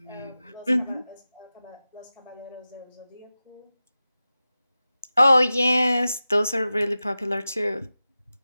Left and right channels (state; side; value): inverted; both; correlation -0.94